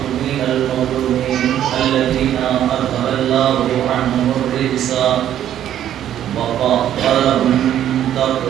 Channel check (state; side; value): quieter; left; 11.1 dB